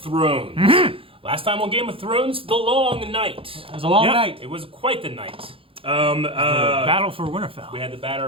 Last time on Game of Thrones, The Long Night. It was a long night. It was quite the night. Battle for Winterfell. We had the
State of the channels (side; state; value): left; late; 0.27 ms